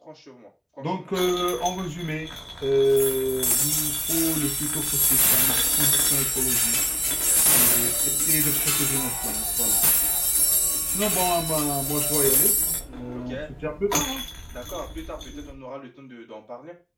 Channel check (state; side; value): identical; both; correlation 1.00